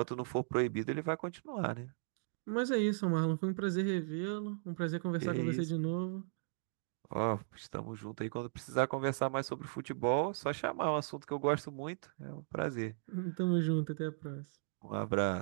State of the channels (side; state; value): left; silent; digital silence